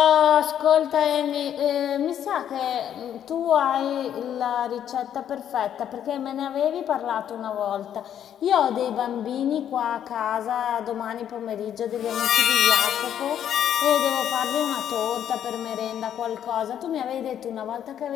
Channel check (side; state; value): right; quieter; 9.8 dB